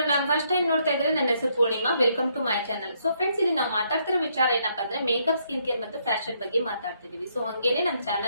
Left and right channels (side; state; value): both; inverted; correlation -0.73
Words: ನಾನು first time ನೋಡ್ತಾ ಇದ್ರೆ ನನ್ನ ಹೆಸರು Poornima. Welcome to my channel. So friends, ಇಲ್ಲಿ ನಾವು ಮಾತಾಡ್ತಿರೋ ವಿಚಾರ ಏನಪ್ಪಾ ಅಂದ್ರೆ ಮೇಕಪ್, ಸ್ಕಿನ್ ಕೇರ್ ಮತ್ತು ಫ್ಯಾಷನ್ ಬಗ್ಗೆ ಮಾತಾಡ್ತಿದೀವಿ. ಸೊ ಹಂಗೇನೆ ನಮ್ಮ